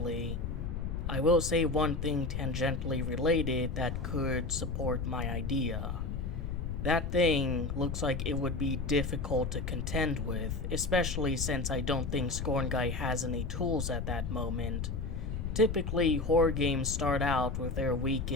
I will say one thing tangentially related that could support my idea. That thing looks like it would be difficult to contend with, especially since I don't think Scorn Guy has any tools at that moment. Typically, horror games start out with their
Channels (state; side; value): noise; left; rumble, 3 dB below the sound